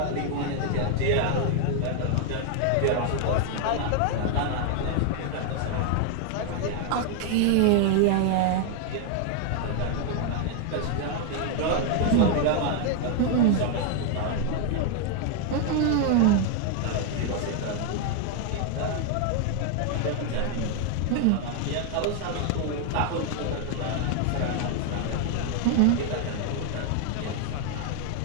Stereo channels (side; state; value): both; different; correlation 0.00